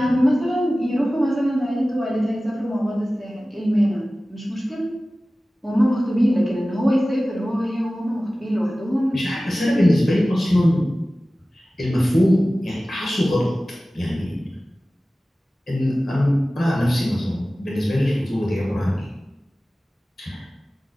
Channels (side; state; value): both; normal; correlation 0.97